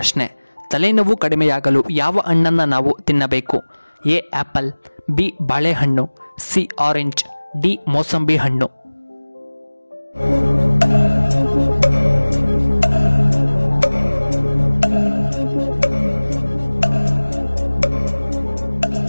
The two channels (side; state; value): both; inverted; correlation -1.00